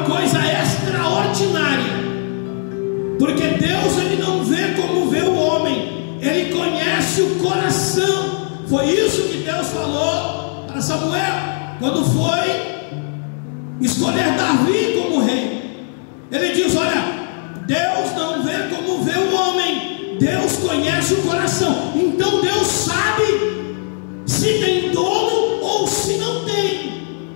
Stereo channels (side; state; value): right; silent; 58 dB below the other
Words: coisa extraordinária, porque Deus, Ele não vê como vê o homem, Ele conhece o coração. Foi isso que Deus falou para Samuel, quando foi escolher Davi como rei. Ele diz: olha, Deus não vê como vê o homem, Deus conhece o coração. Então Deus sabe se tem dono ou se não tem,